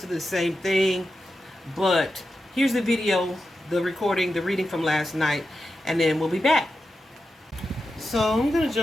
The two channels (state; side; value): normal; both; correlation 0.90